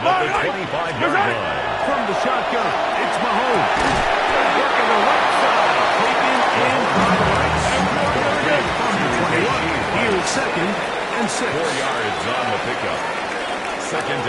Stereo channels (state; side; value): identical; both; correlation 1.00